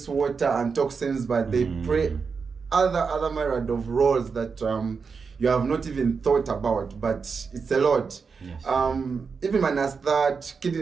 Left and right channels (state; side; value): quieter; left; 5.4 dB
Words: water and toxins, but they play other myriad of roles that you have not even thought about, but it's a lot. Even minus that,